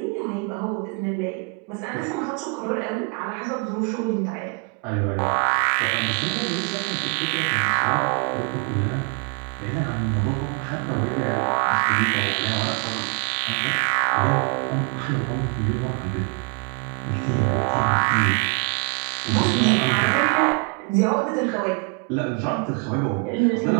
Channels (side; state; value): left; quieter; 34.3 dB